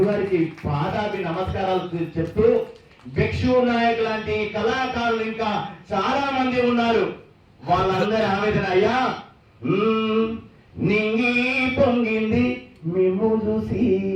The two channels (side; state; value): both; identical; correlation 1.00